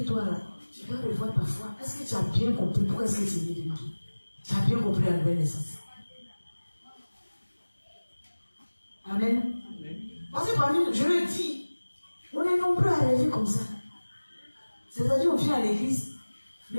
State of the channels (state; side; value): inverted; both; correlation -1.00